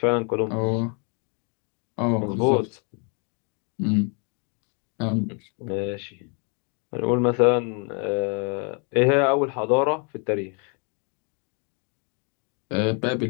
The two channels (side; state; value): right; quieter; 37.4 dB